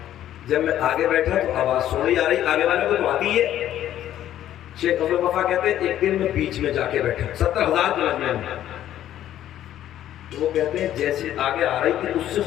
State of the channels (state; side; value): quieter; right; 12.0 dB